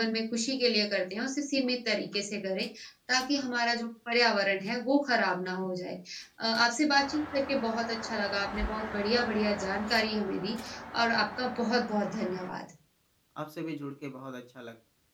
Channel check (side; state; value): both; identical; correlation 1.00